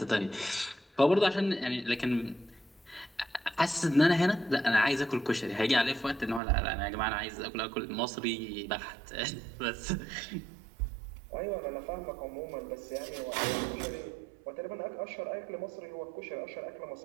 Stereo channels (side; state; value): left; drops out; at 6.4 s